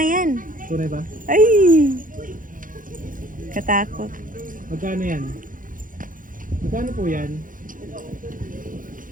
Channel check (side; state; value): left; late; 0.39 ms